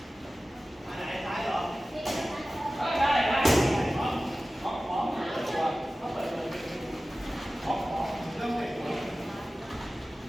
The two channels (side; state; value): both; normal; correlation 0.96